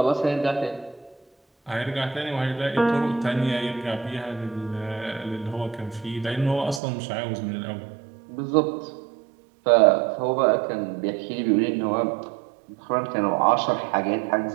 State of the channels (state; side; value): drops out; left; at 6.8 s